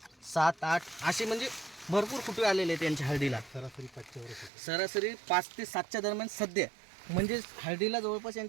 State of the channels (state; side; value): drops out; left; at 4.5 s